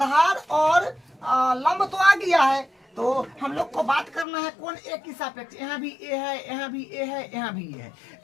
और लंब तो आ गया है, तो हम लोग को बात करना है कोण ए की सापेक्ष। यहाँ भी ए है, यहाँ भी ए है, यहाँ भी ए है,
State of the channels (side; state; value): right; drops out; at 4.2 s